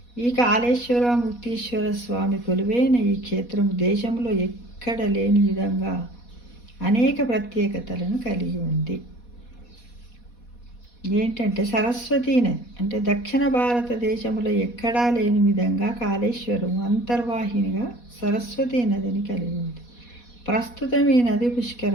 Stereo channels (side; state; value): right; late; 4.1 ms